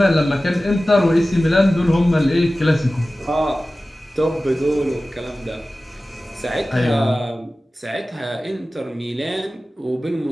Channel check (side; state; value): both; normal; correlation 0.96